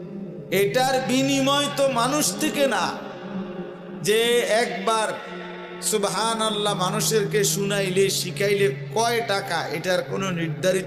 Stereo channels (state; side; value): identical; both; correlation 1.00